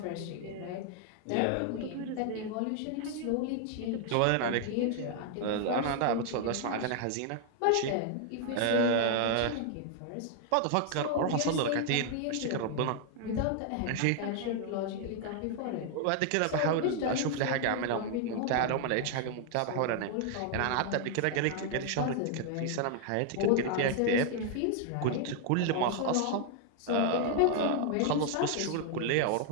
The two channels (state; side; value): different; both; correlation 0.00